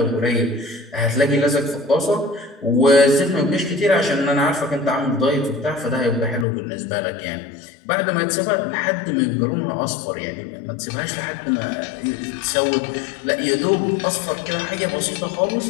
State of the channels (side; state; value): right; drops out; at 6.5 s